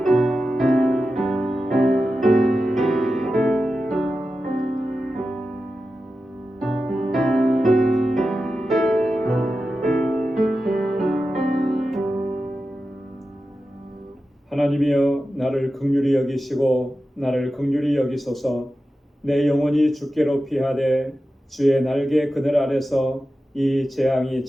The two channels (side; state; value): both; normal; correlation 0.92